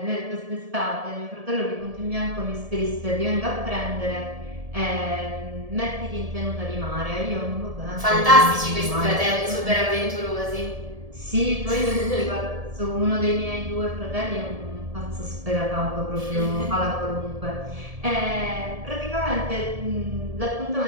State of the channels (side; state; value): left; late; 1.7 ms